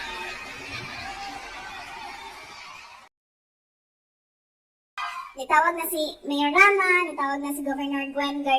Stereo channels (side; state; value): both; identical; correlation 1.00